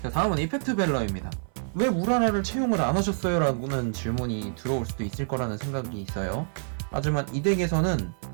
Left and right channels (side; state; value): left; silent; 60 dB below the other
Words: 자, 다음은 이펙트 벨러입니다. 왜 우라라를 채용을 안 하셨어요? 라는 질문이 들어올 수도 있을 거라는 생각이 있어요. 하지만 이 덱에서는